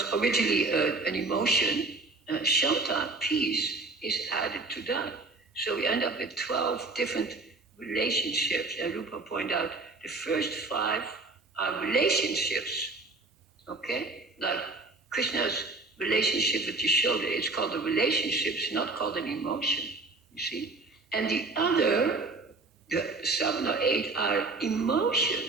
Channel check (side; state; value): left; quieter; 3.4 dB